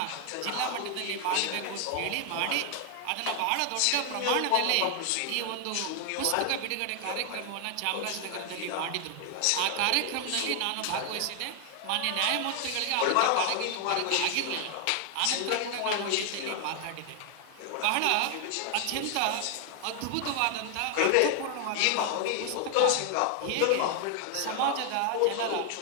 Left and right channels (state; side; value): different; both; correlation 0.00